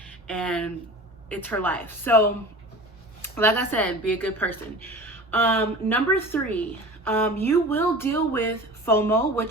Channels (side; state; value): both; normal; correlation 0.37